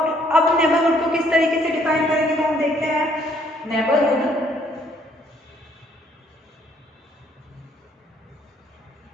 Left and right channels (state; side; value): normal; both; correlation 0.65